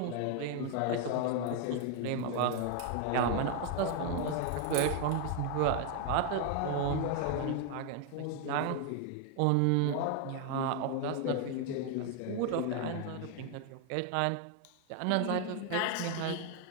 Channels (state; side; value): different; both; correlation 0.01